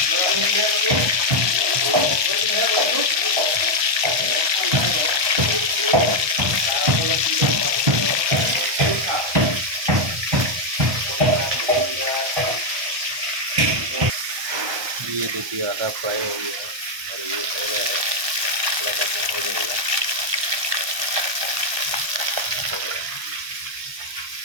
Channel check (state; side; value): late; left; 1.2 ms